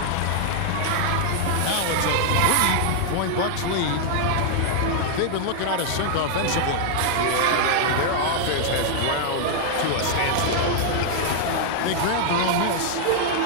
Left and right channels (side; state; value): both; different; correlation -0.01